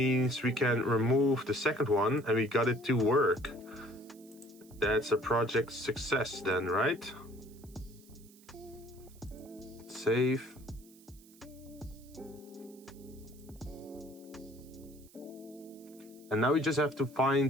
we can remove the second one and we got it to work. That's a project success then, right? Save. And now we just have to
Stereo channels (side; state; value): right; noise; hiss, 25 dB below the sound